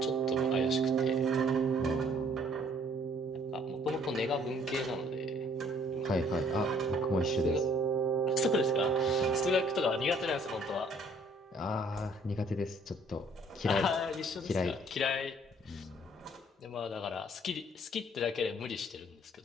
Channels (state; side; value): normal; both; correlation 0.60